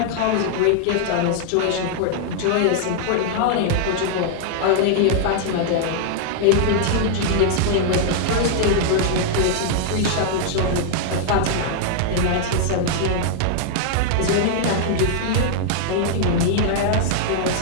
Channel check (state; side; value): different; both; correlation -0.01